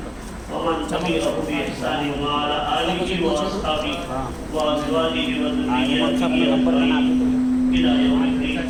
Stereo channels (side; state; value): both; identical; correlation 1.00